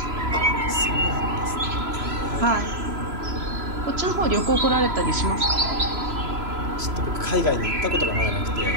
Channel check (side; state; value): left; late; 3.0 ms